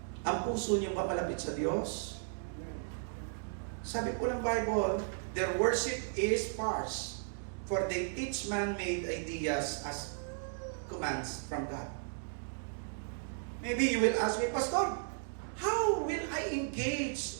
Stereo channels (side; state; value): left; silent; digital silence